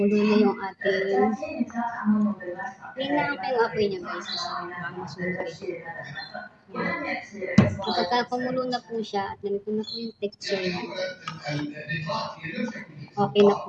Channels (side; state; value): both; identical; correlation 1.00